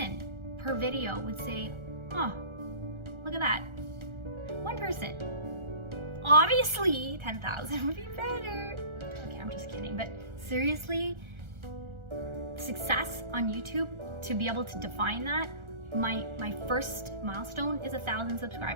per video would say, oh, look at that. One person. Obviously, 10,000 would be better. Okay, I'm just kidding. But seriously, success on YouTube, to be able to define that, my first milestone is 1,000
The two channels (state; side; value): late; left; 1.4 ms